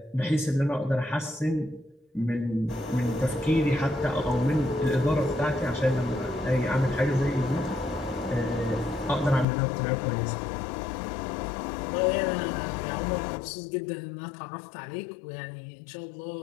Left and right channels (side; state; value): right; drops out; at 9.5 s